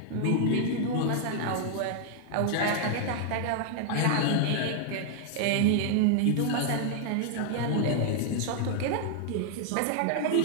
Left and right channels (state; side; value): different; both; correlation 0.00